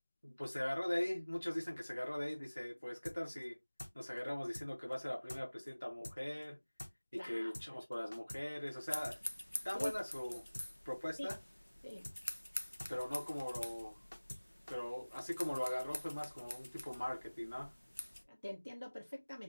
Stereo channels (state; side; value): inverted; both; correlation -1.00